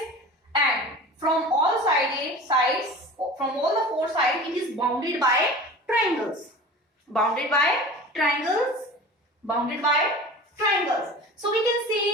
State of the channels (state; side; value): normal; both; correlation 0.37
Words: and from all sides, from all the 4 sides, it is bounded by triangles. So we can